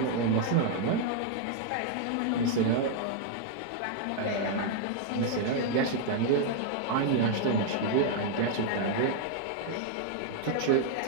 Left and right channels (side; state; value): both; different; correlation 0.00